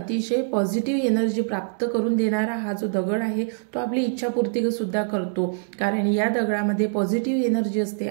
पॉझिटिव्ह एनर्जी प्राप्त करून देणारा हा जो दगड आहे तो आपली इच्छापूर्ती सुद्धा करतो, कारण या दगडामध्ये पॉझिटिव्ह एनर्जी असते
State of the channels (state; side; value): silent; left; digital silence